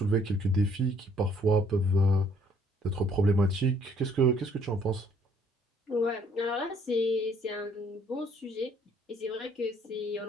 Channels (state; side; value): normal; both; correlation 0.63